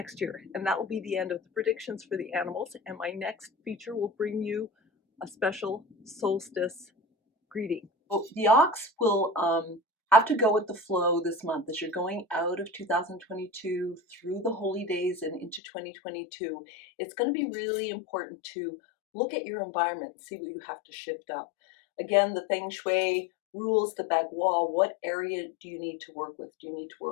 year. And that will be the end of the predictions for the animals. And my next feature will bring you a special solstice greeting. Well, the ox will have to go with the flow this month as you're going out of 2022 through the holy days and into 2022. It's going to be really important to look at your environment and see what you have to shift up. Again, the Feng Shui rules, the bagua, what area do you need to work with? Do you need to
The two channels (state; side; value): drops out; right; at 15.6 s